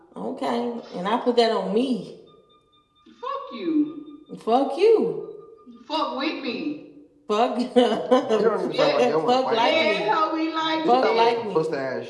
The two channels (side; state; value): both; identical; correlation 1.00